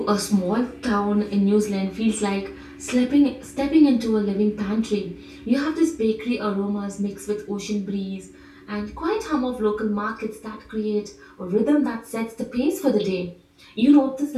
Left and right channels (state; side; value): identical; both; correlation 1.00